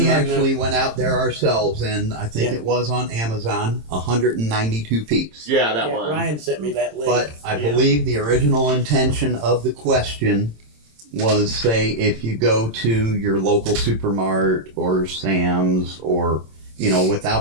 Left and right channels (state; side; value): late; left; 26 ms